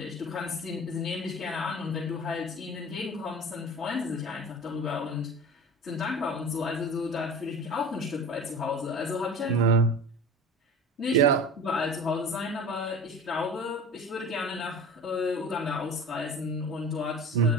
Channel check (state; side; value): normal; both; correlation 0.36